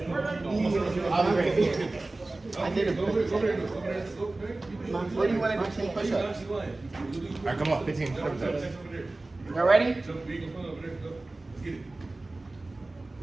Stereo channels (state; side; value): quieter; left; 3.0 dB